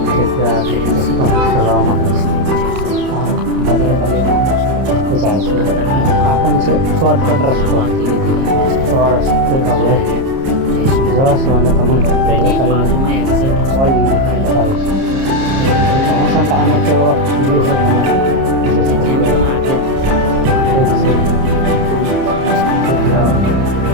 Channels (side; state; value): left; late; 30 ms